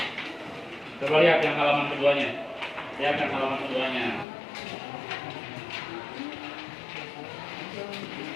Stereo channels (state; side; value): drops out; right; at 4.2 s